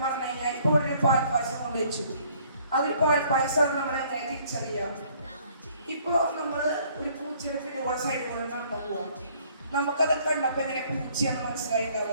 പറഞ്ഞു കഴിഞ്ഞാൽ ഇപ്പോൾ ഒരു പാൽപ്പായസം കൊണ്ട് വെച്ചു. അതിൽ പാൽപ്പായസം നമ്മൾ എങ്ങനെ തിരിച്ചറിയാം? ഇപ്പോൾ നമ്മൾ ഒരു പൂച്ചയുടെ പിന്നെ സൈഡിൽ കൂടെ നടന്നു പോവാം. നമുക്കത് കണ്ടപ്പോൾ എങ്ങനെ പൂച്ചയെന്ന്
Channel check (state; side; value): inverted; both; correlation -0.61